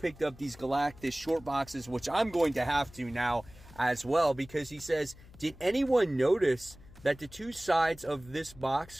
up these Galactus short boxes, which I'm going to have to now as well, because he says, did anyone notice that the two sides of this box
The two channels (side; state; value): left; noise; hum, 21 dB below the sound